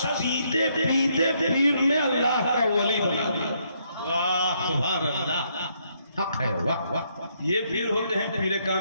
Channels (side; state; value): both; inverted; correlation -0.73